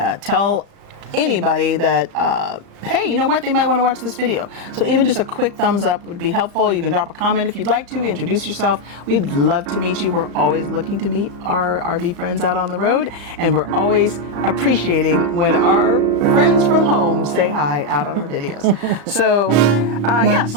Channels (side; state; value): left; late; 35 ms